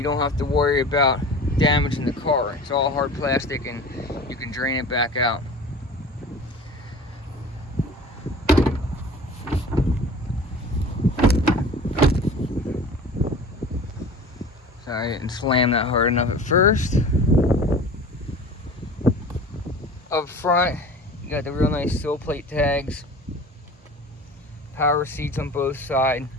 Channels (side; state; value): both; normal; correlation 0.40